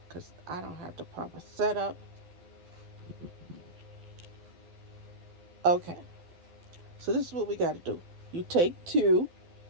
because I don't have the proper setup. Okay, so this is what we got to do. You take 2,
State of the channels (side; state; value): left; late; 12 ms